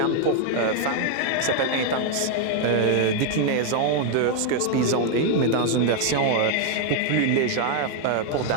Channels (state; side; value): different; both; correlation 0.00